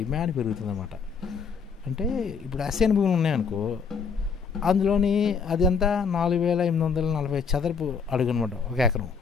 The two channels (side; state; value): right; quieter; 5.8 dB